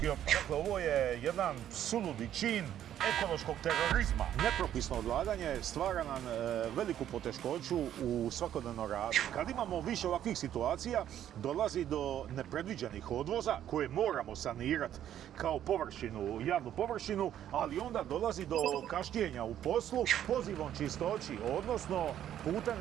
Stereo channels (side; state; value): left; quieter; 10.9 dB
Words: otpad. Dakle, ovo je jedan suludi čin ekološkog terorizma. Nepropisno odlaganje stvara nam veliku poteškoću u svakodnevnom radu. Kad imamo više ovakvih situacija, dolazi do nepredviđenih odvoza koje moramo sanirati kao površinu, javnu površinu, ali onda dolazi do kašnjenja u poslu pozivom čistoći, odnosno